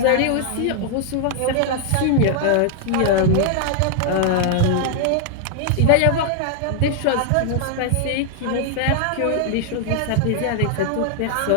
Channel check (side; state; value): both; different; correlation 0.00